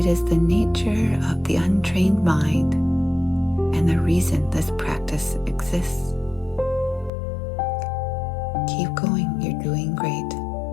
is the nature of the untrained mind and the reason this practice exists. Keep going, you're doing great.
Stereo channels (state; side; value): drops out; right; at 7.1 s